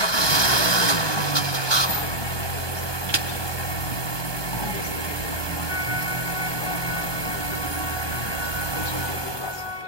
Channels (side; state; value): right; late; 1.2 ms